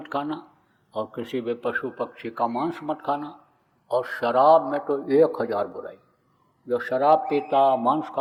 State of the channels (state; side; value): identical; both; correlation 1.00